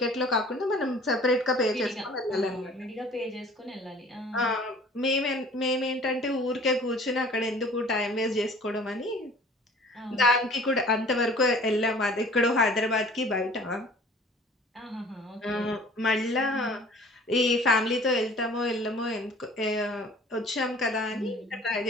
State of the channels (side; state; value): both; normal; correlation 0.49